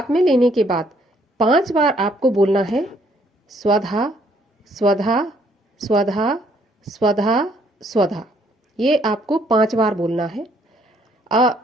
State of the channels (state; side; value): normal; both; correlation 0.66